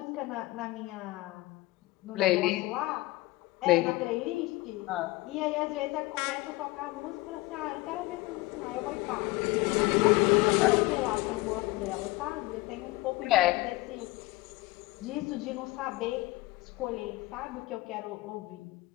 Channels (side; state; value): right; quieter; 20.8 dB